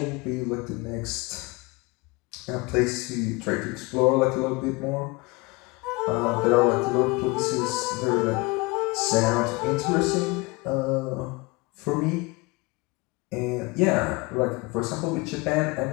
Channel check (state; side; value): quieter; right; 25.6 dB